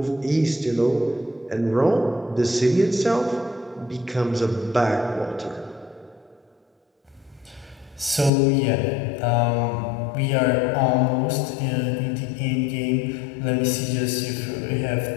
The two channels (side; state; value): right; drops out; at 8.3 s